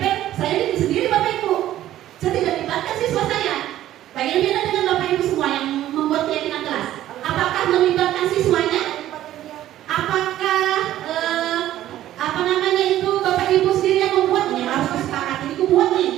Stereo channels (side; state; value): left; quieter; 13.2 dB